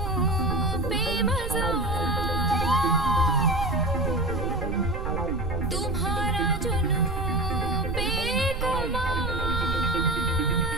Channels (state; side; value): noise; right; rumble, 4 dB below the sound